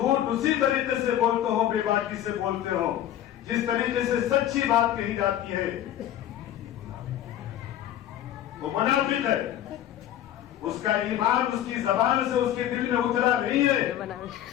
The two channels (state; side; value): quieter; right; 11.7 dB